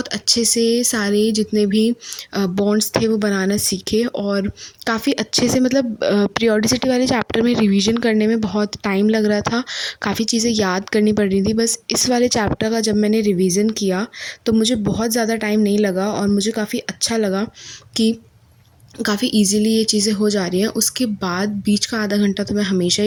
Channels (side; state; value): both; identical; correlation 1.00